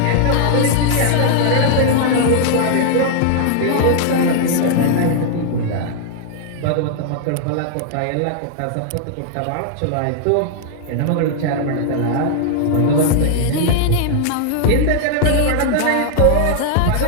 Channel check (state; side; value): different; both; correlation -0.01